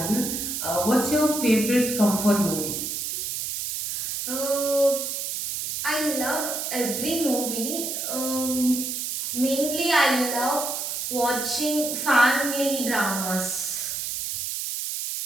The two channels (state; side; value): noise; right; hiss, 3 dB below the sound